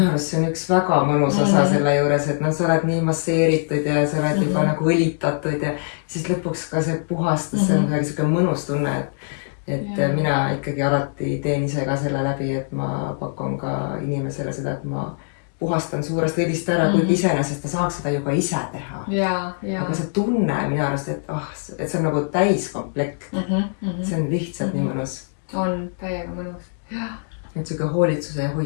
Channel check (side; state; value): right; silent; 64 dB below the other